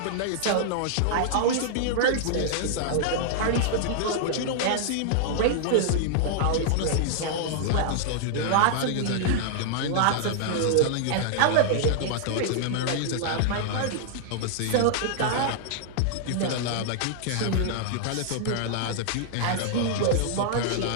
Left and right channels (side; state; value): both; different; correlation -0.01